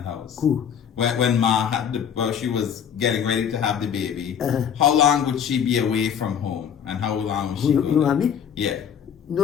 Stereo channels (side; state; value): right; quieter; 8.2 dB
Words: house? Who? When Ma she was getting ready to have the baby, how long would she be away from home? And how long was she Your mommy? Yeah.